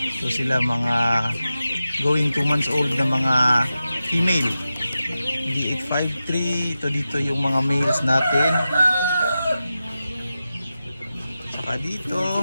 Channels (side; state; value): both; inverted; correlation -0.92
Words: So sila mga going 2 months old na mga female. D853. Ito dito yung mga males natin. Saka dito